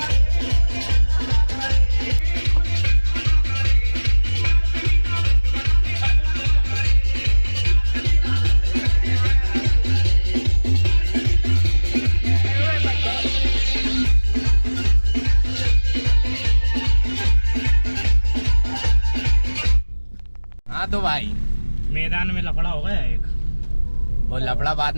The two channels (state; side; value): inverted; both; correlation -1.00